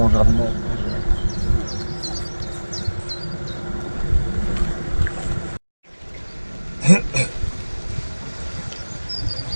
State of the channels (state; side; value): inverted; both; correlation -1.00